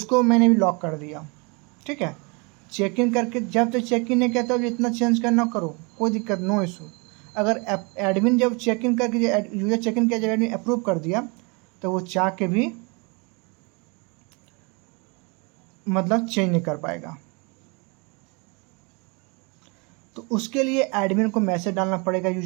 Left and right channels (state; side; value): quieter; left; 30.9 dB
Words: मैंने भी लॉक कर दिया। ठीक है। चेक इन करके जब तक चेक इन नहीं कहता तो इतना चेंज करना करो, कोई दिक्कत, नो इशू। अगर एडमिन जब चेक इन करके यूज़र चेक इन किया, जब एडमिन अप्रूव कर दिया तो वो चाह के भी मतलब चेंज नहीं कर पाएगा। तो उसके लिए एडमिन को मैसेज डालना पड़ेगा,